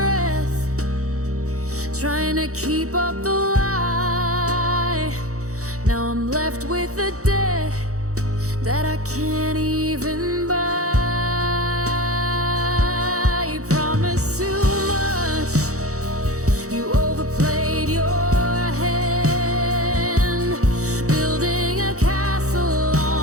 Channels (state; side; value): late; left; 0.65 ms